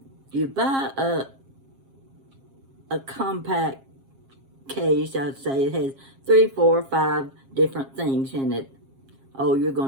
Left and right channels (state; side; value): late; left; 7.4 ms